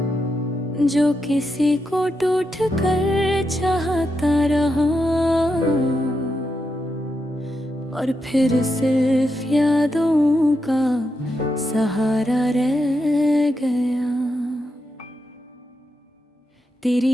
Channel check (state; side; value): normal; both; correlation 0.85